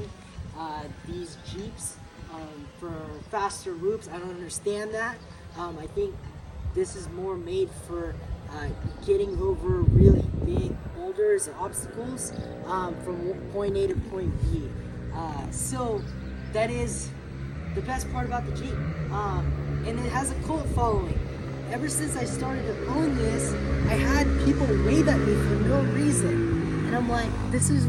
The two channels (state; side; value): identical; both; correlation 1.00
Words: these Jeeps for faster loops. I don't understand that. I think this is more made for getting over really big boulders and obstacles from point A to point B. So that is the best part about the Jeep. And it has a cult following. Ever since I started to own this, I had people wave at me for no reason. And I'm like, this is